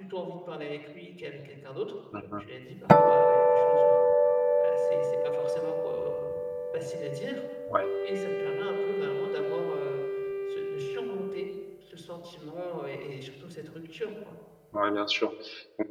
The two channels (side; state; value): both; identical; correlation 1.00